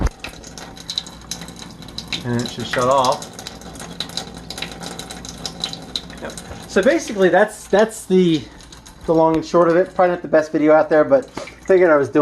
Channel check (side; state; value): both; identical; correlation 1.00